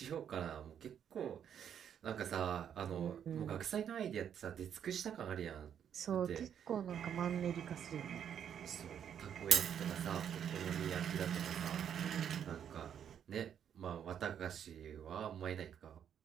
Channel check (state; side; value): quieter; left; 8.8 dB